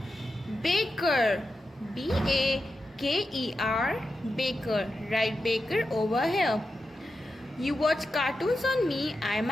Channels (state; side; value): normal; both; correlation 0.89